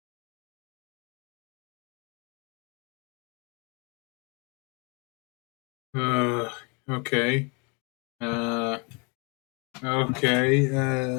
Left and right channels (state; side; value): quieter; right; 32.9 dB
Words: uh, okay. Uh, okay.